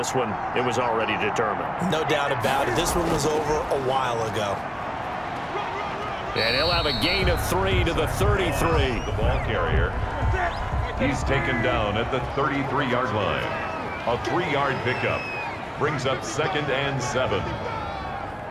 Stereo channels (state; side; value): identical; both; correlation 1.00